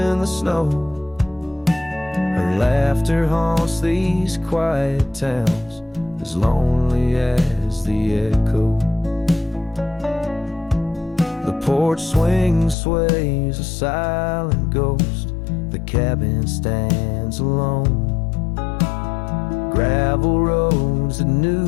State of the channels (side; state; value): right; drops out; at 12.8 s